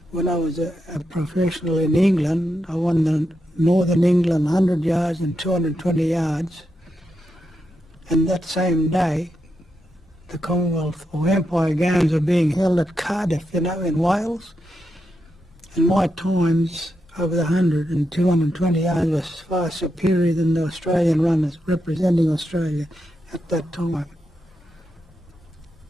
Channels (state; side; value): normal; both; correlation 0.85